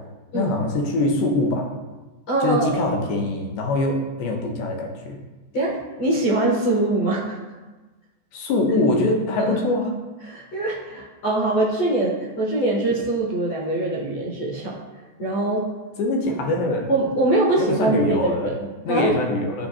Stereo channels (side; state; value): right; late; 14 ms